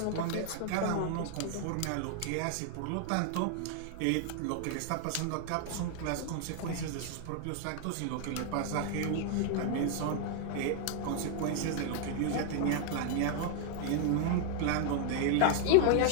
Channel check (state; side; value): different; both; correlation 0.00